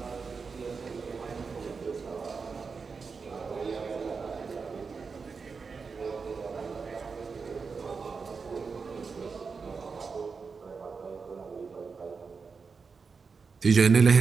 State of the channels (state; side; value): quieter; left; 5.1 dB